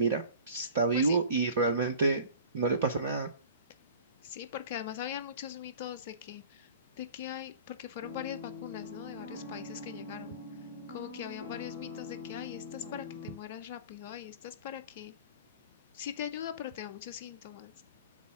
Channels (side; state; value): both; inverted; correlation -0.42